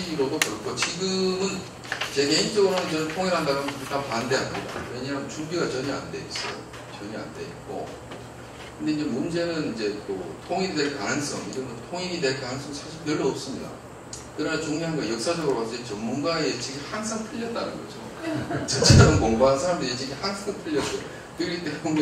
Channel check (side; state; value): both; identical; correlation 1.00